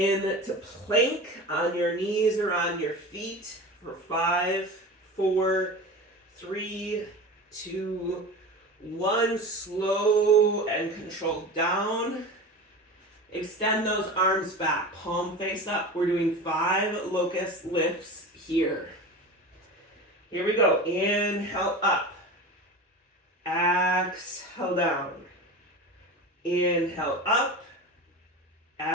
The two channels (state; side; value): normal; both; correlation 0.31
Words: plank on your knees or on your feet for 5, 4, 3, 2, 1. Slow and controlled down. Extend those arms back, palm face up. We're doing 5 locust lifts here. Here we go. Inhale up. Exhale down. Inhale up.